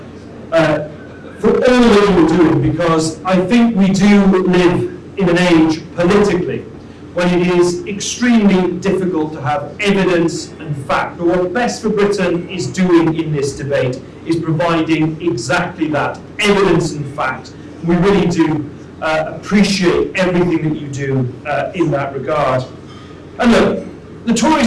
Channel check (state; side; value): identical; both; correlation 1.00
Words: all that you're doing, because I think we do live in an age politically when it is extremely difficult to have evidence and fact. But what Best for Britain is doing in this debate is providing exactly that, evidence and fact. We really do appreciate everything that you do in that regard. And look, the